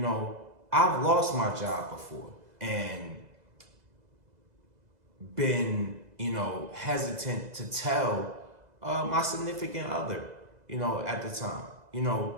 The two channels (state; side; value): late; left; 2.0 ms